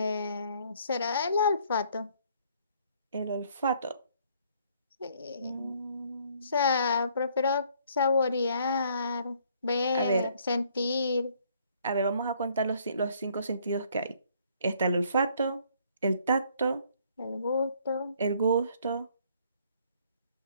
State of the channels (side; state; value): both; inverted; correlation -0.63